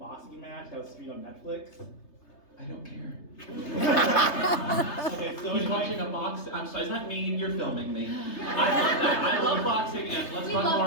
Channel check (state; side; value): late; right; 3.3 ms